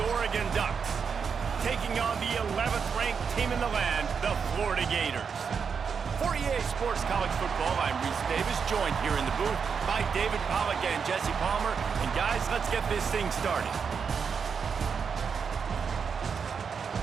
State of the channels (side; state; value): left; quieter; 6.2 dB